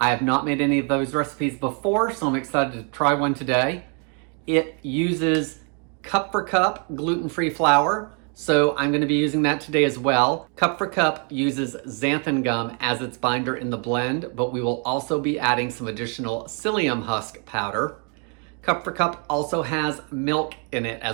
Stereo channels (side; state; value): left; quieter; 38.2 dB